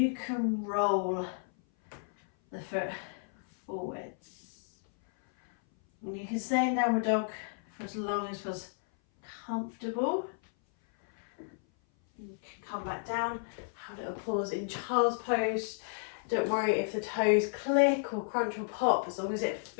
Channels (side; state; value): right; silent; 56 dB below the other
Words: can roll the foot forwards. And you can stay in downward dog for as long as feels comfortable. You can come back down, have a little pause in child's pose. Don't worry if the toes click or crunch or pop, as long as it